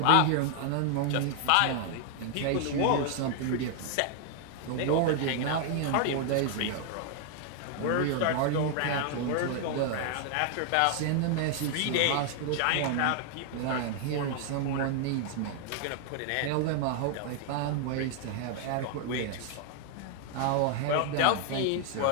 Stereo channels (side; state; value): both; different; correlation 0.00